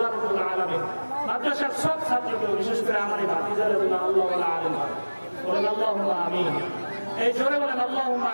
রাব্বুল আলামিন মাদ্রাসার সব ছাত্রকে, বিশেষ করে আমার এই ভাতিজারে বলে আল্লাহ আলিম বলেন আল্লাহুম্মা আমিন। এই জোরে বলেন আল্লাহুম্মা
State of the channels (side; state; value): both; inverted; correlation -1.00